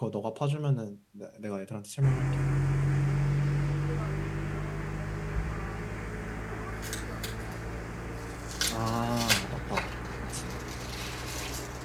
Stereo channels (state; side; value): identical; both; correlation 1.00